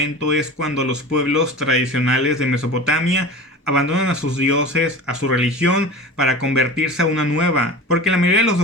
es cuando los pueblos tradicionales de Mesopotamia abandonan a sus dioses, a su religión, para convertirse a una nueva. Porque la mayoría de los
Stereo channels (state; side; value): normal; both; correlation 0.34